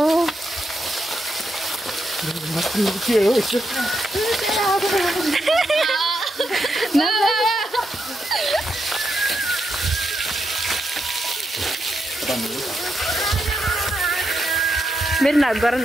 के हो यसो मेरो नाच गर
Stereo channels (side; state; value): both; normal; correlation 0.82